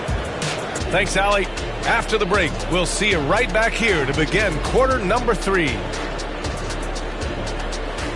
Thanks, Allie. After the break, we'll see you right back here to begin quarter number 3.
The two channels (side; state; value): both; identical; correlation 1.00